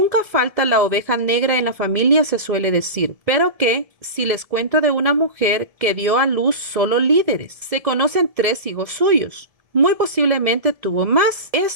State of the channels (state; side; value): late; left; 1.7 ms